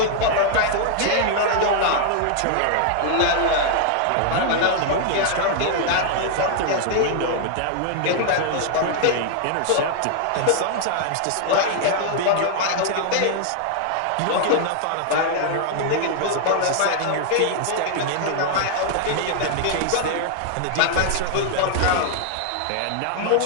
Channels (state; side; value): different; both; correlation 0.00